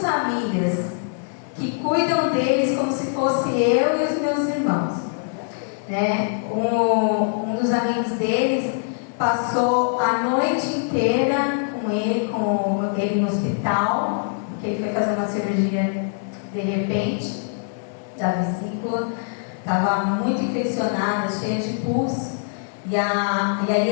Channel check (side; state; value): right; silent; digital silence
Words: que cuidam deles como se fosse eu e os meus irmãos. Né? Um dos amigos deles passou a noite inteira com ele no hospital, porque ele foi fazer uma cirurgia de repente da vesícula, estava muito infeccionada, cheia de pus. E